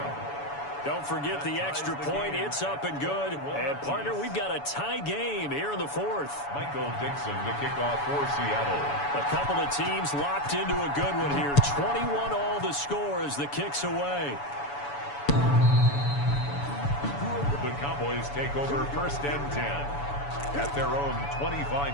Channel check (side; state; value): right; late; 7.0 ms